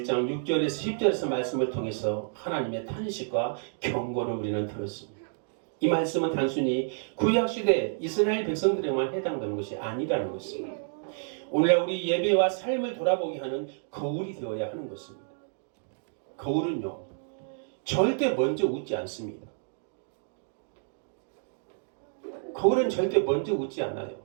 1장 6절에서 10절에서 말씀을 통해서 하나님의 탄식과 경고를 우리는 들었습니다. 이 말씀은 단순히 구약시대 이스라엘 백성들에만 해당되는 것이 아니라는 것입니다. 오늘날 우리 예배와 삶을 돌아보게 하는 거울이 되어야 하는 것입니다. 거울은요, 절대 먼저 웃지 않습니다. 거울은 절대 먼저 웃지 않아요.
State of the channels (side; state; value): left; silent; digital silence